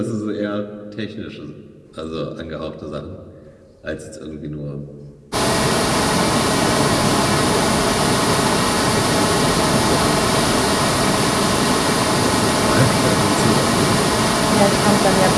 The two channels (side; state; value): both; identical; correlation 1.00